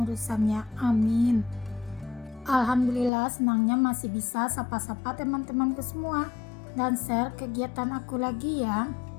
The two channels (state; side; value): drops out; right; at 3.1 s